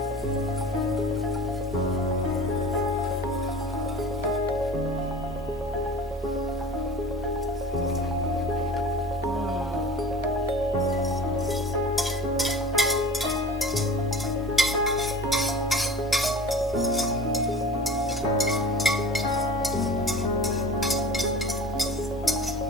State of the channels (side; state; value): both; normal; correlation 0.39